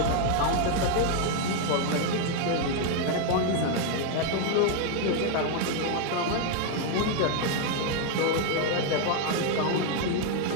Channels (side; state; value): both; different; correlation 0.01